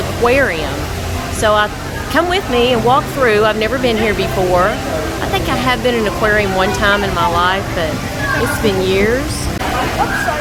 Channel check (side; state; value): both; identical; correlation 1.00